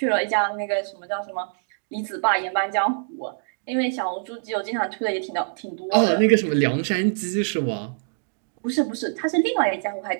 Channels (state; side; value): silent; left; digital silence